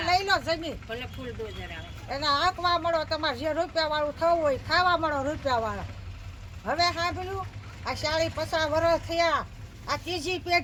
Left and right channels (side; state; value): both; identical; correlation 1.00